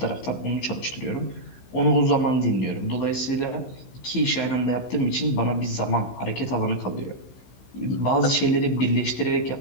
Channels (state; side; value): late; right; 16 ms